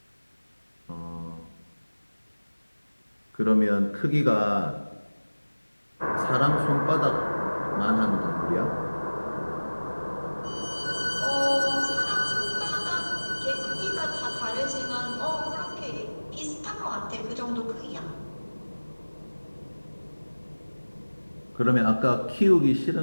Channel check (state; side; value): inverted; both; correlation -1.00